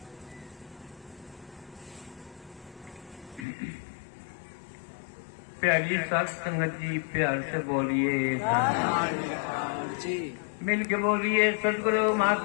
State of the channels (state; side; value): drops out; right; at 3.5 s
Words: प्यारी साथ संगत जी प्यार से बोलिए जी। मिल के बोलिए सदगुरु